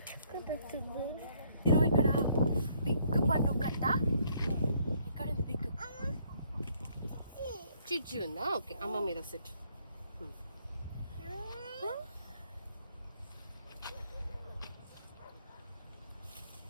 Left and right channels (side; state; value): both; inverted; correlation -0.66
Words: ఇక్కడ బిగ్ పన్ను కట్ట. ఇక్కడ బిగ్ చిచ్చు ఉందా? ఓకే, అమ్మ మీద సెట్.